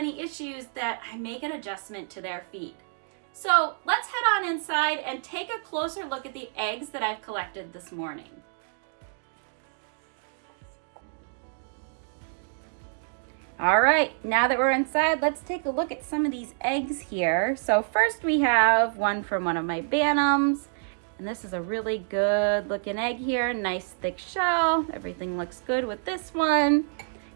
issues, that I make an adjustment to their feed. So let's head on inside and take a closer look at the eggs that I've collected this morning. All right, now that we're inside, let's take a look at some of these eggs here. So first we have one from one of my Bantams, and this is a really good looking egg here, nice thick shell. Everything looks good with this one.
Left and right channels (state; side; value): silent; left; digital silence